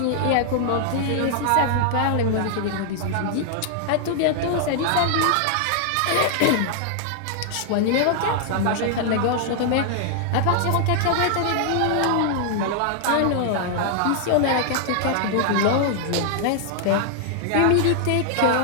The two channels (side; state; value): both; different; correlation -0.01